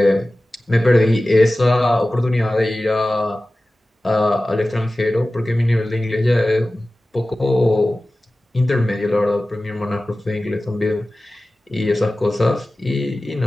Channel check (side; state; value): both; normal; correlation 0.96